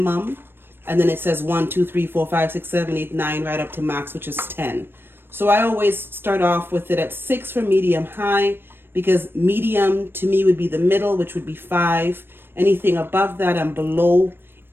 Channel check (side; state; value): left; late; 0.10 ms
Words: and then it says 1, 2, 3, 4, 5, 6, 7, 8, 9, right up to max, which is 10. So I always start off with it at 6 for medium-high, because medium to me would be the middle, which would be 5. Anything above that and below